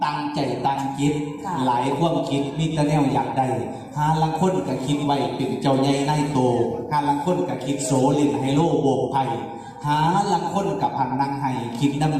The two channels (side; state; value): both; identical; correlation 1.00